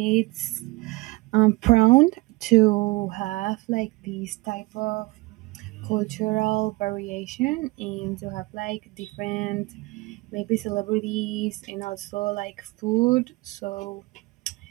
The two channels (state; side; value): quieter; left; 22.8 dB